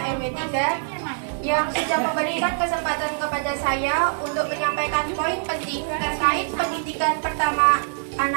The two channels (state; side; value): silent; left; 60 dB below the other